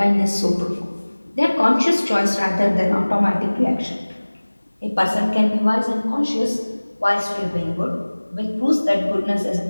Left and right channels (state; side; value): inverted; both; correlation -1.00